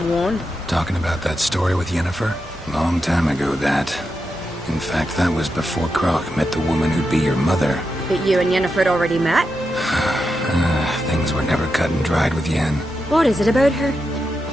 Talking about that story with Yennefer? Long time ago, that. In fact, that was before Croc met the woman who'd be your mother. But you and Yennefer had already met? Things were never cut and dried with Yen. What is it about her?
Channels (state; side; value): normal; both; correlation 0.87